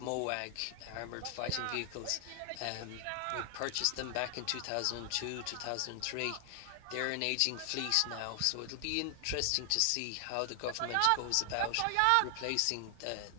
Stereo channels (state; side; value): different; both; correlation 0.00